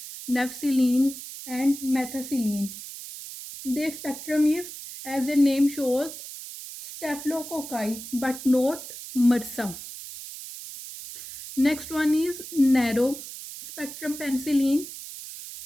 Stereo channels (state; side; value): noise; right; hiss, 11 dB below the sound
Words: nafcillin, and methicillin. Their spectrum is, as the name shows, staphylococci, but not MRSA. Next one is narrow spectrum penicillin,